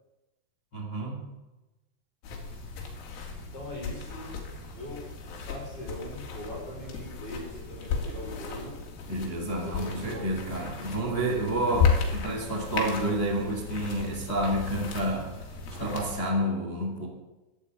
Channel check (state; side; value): late; right; 14 ms